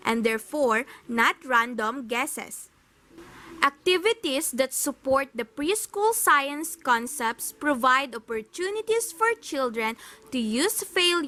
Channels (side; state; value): both; identical; correlation 1.00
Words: and therefore not random guesses. Activities that support the preschool science concepts provide opportunities for children to use